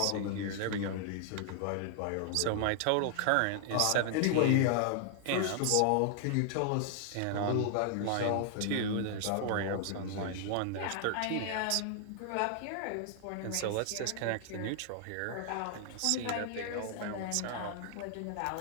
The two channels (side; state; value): both; different; correlation 0.00